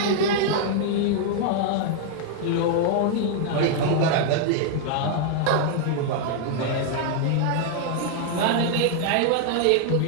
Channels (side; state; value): both; different; correlation 0.00